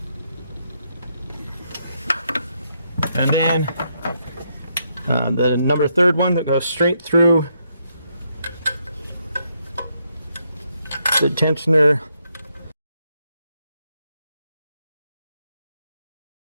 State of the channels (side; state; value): both; inverted; correlation -0.77